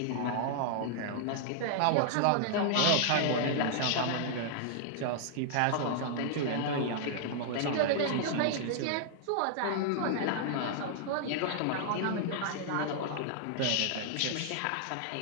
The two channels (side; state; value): both; different; correlation -0.01